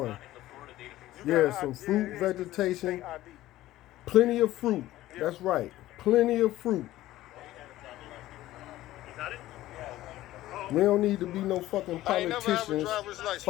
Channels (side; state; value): right; quieter; 15.4 dB